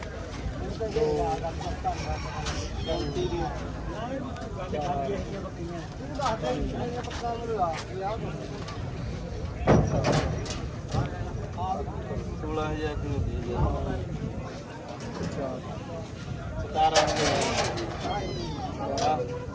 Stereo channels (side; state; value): both; identical; correlation 1.00